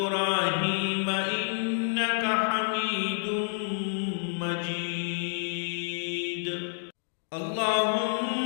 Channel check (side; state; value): right; silent; digital silence